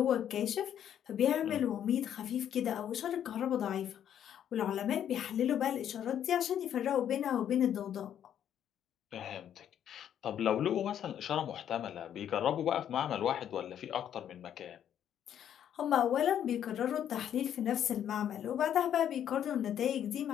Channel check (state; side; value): quieter; right; 9.8 dB